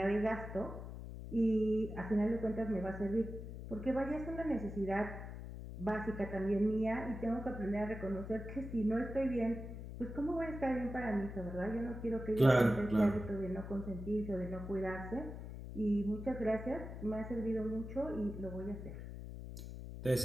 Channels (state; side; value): noise; left; hum, 9 dB below the sound